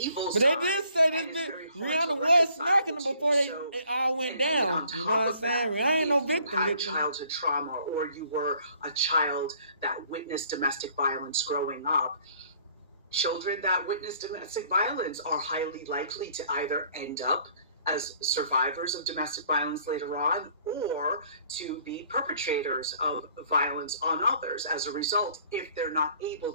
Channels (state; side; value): inverted; both; correlation -0.59